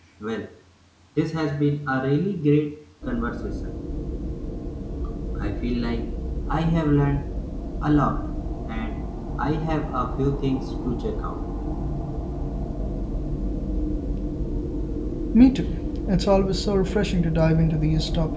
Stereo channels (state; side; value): identical; both; correlation 1.00